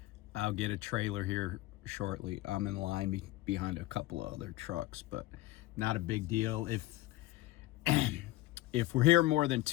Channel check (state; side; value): quieter; right; 17.5 dB